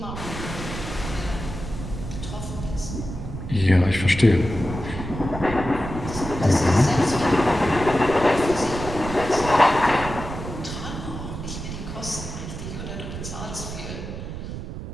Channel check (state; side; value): noise; right; rumble, 8 dB below the sound